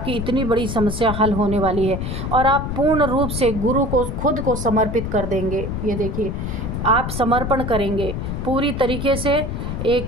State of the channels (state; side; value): noise; left; rumble, 4 dB below the sound